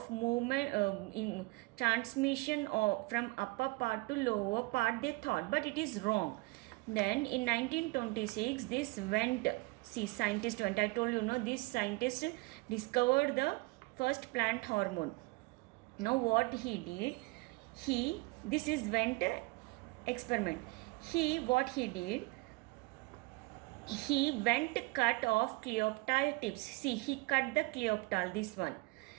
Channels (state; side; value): quieter; left; 24.6 dB